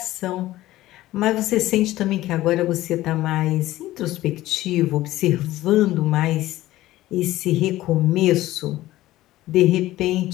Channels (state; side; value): quieter; right; 16.0 dB